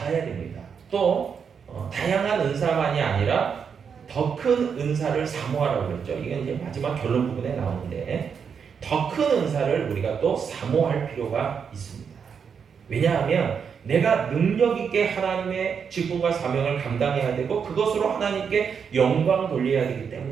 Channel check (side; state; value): left; quieter; 6.7 dB